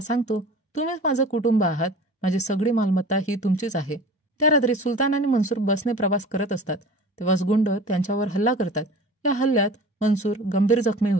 सांगतो, तुम्हीच माझं कुटुंब आहात, माझी सगळी मालमत्ता ही तुमचीच आहे. त्या रात्री सुलतान आणि मनसूर बसने प्रवास करत असतात, तेव्हाच गुंड त्यांच्यावर हल्ला करतात. या हल्ल्यात मनसूर गंभीर जखमी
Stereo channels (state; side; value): normal; both; correlation 0.40